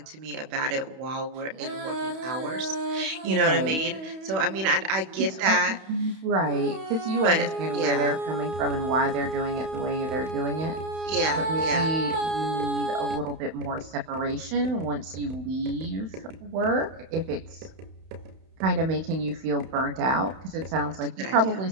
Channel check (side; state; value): left; late; 31 ms